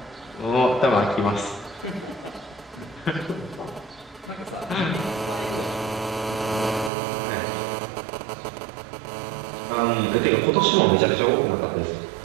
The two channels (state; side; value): drops out; left; at 6.9 s